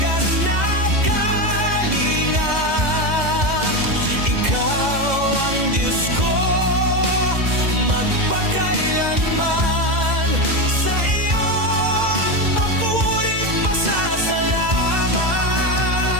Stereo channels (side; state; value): left; late; 2.0 ms